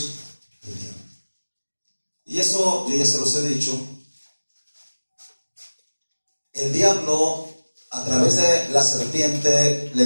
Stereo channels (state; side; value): inverted; both; correlation -1.00